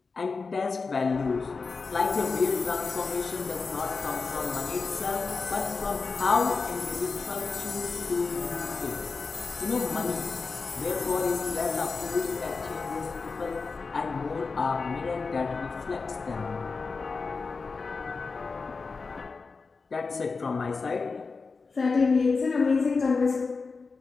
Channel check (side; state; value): right; quieter; 4.4 dB